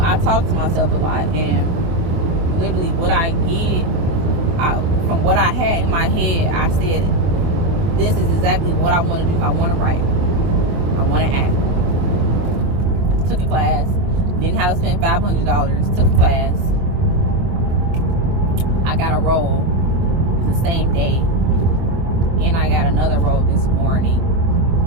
talk to myself a lot, and literally what I get, from what I had in my head, I said, this is exactly what I want to do. I want to write. I want to act. Took a class. Didn't have to spend $500. Took a class. I got a role the same day. And I got another role this morning.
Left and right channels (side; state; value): left; late; 24 ms